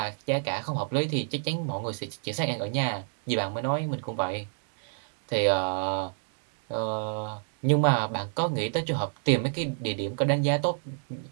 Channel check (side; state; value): left; silent; digital silence